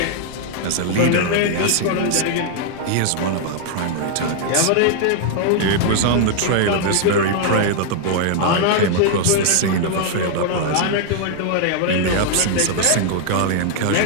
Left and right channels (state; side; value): different; both; correlation 0.00